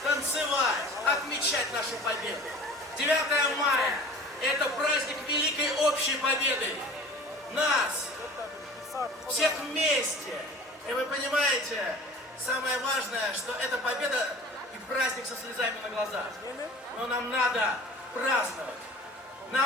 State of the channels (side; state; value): both; normal; correlation 0.42